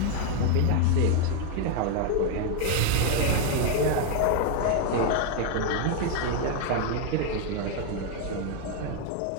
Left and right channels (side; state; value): both; different; correlation 0.01